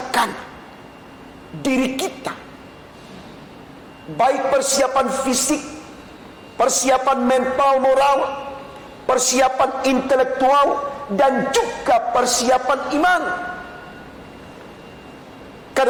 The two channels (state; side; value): identical; both; correlation 1.00